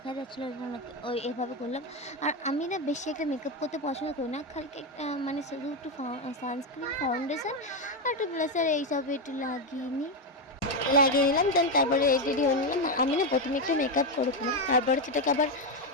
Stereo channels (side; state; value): both; normal; correlation 0.08